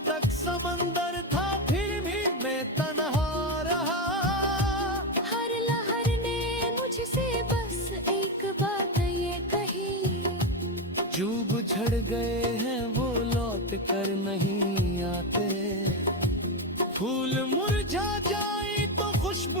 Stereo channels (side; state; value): both; normal; correlation 0.11